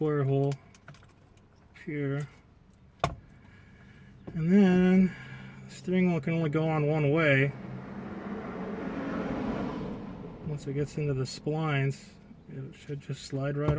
hole here. And then the steering wheel can only go on one way. Once it gets into the splines, it should just slide right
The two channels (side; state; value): both; identical; correlation 1.00